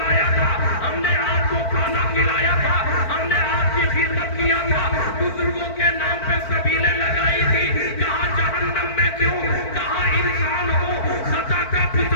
تھا ہم نے آپ کو کھانا کھلایا تھا ہم نے آپ کی خدمت کیا تھا بزرگوں کے نام پہ سبیلیں لگائی تھی کہاں جہنم میں کیوں کہاں انسان ہو خطا کا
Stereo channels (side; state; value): right; late; 4.5 ms